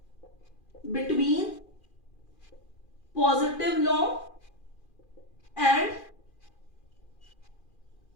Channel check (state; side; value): late; right; 2.4 ms